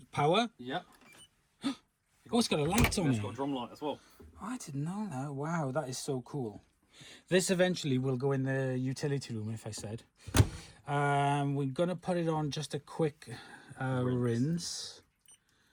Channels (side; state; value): both; identical; correlation 1.00